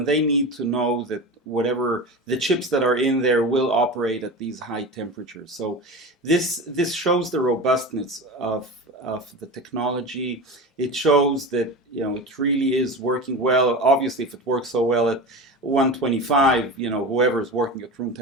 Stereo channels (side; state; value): both; normal; correlation 0.28